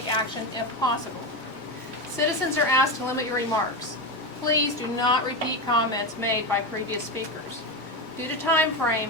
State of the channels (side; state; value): both; normal; correlation 0.16